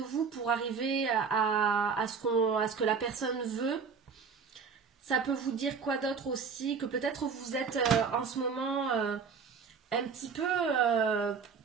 pour arriver à ce que la personne veut. Ça peut vous dire quoi d'autre aussi? Que peut-être vous êtes en ce moment un petit peu,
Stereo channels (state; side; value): quieter; left; 5.8 dB